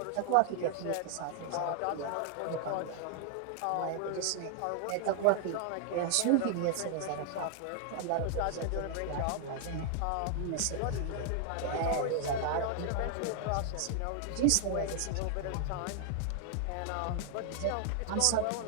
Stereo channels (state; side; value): different; both; correlation 0.00